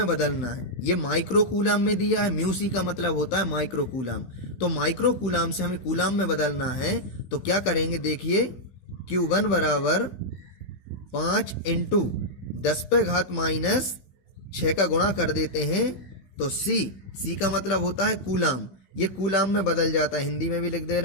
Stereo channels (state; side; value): late; right; 16 ms